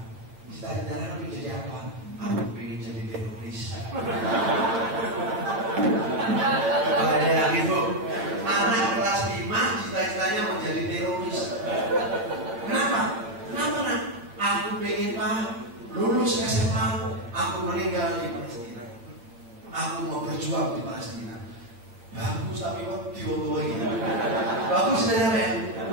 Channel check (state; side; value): late; left; 8.7 ms